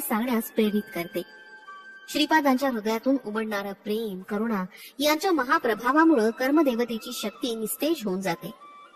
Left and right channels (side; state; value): both; identical; correlation 1.00